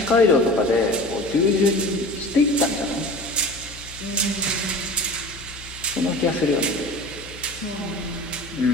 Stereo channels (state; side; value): noise; left; hum, 17 dB below the sound